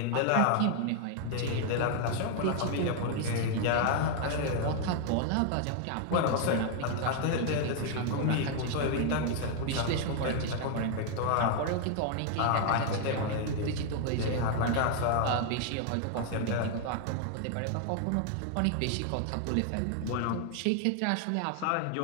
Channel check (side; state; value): both; different; correlation 0.00